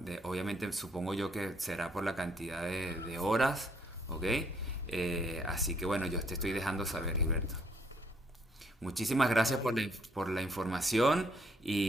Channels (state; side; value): normal; both; correlation 0.67